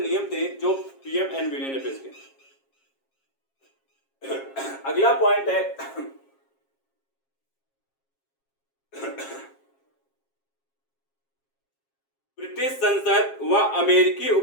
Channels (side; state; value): right; late; 7.4 ms